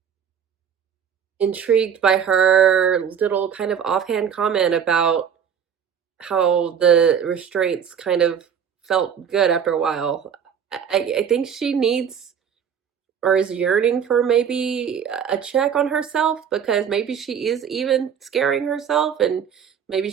intrigued by her little kind of offhand comment about how the restraints kind of felt good after a while. I think she needs or is yearning for maybe a check on herself, because maybe she is even scaring herself, and maybe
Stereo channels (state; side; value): quieter; left; 7.8 dB